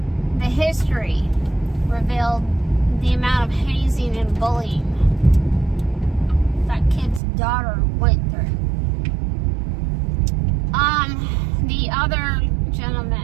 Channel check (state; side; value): drops out; left; at 7.2 s